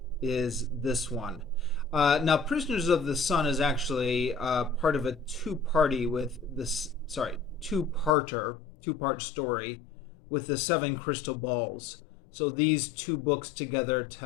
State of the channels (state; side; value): drops out; right; at 8.1 s